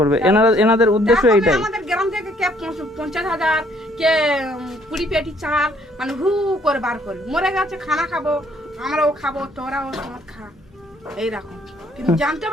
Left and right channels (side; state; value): both; normal; correlation 0.64